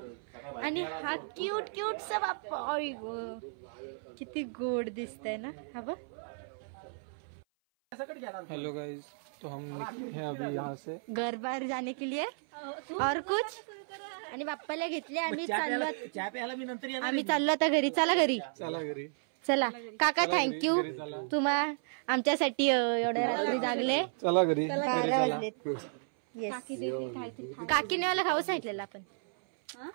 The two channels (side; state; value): left; silent; 56 dB below the other